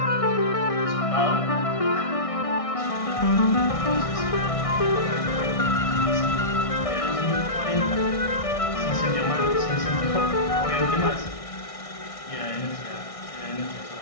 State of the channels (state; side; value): late; right; 1.6 ms